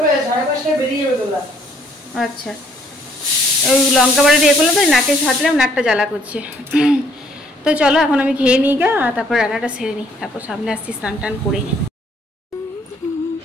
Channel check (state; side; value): normal; both; correlation 0.64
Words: আচ্ছা, ওই লঙ্কা বাড়ি দিয়ে করলাম, তো নাকে ছাড়লাম, নাকটা জ্বালা করছে। তো চলো এখন আমি খেয়ে নিই গা, আর তারপর রান্নাটা সেরে নিই, তারপর সামনে আসছি স্নান টান করে।